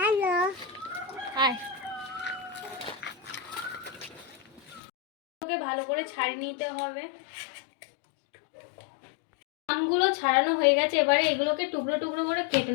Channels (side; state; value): right; drops out; at 4.8 s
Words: আয়। ওকে ভালো করে ছাড়িয়ে নিতে হবে। আমগুলো ছাড়ানো হয়ে গেছে, এবারে এগুলোকে টুকরো টুকরো করে কেটে